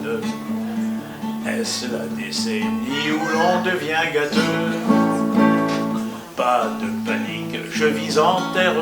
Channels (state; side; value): identical; both; correlation 1.00